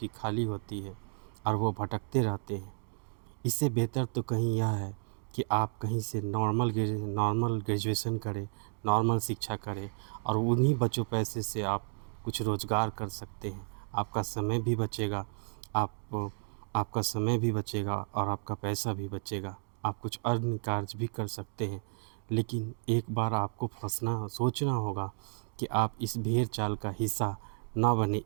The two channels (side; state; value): left; silent; 56 dB below the other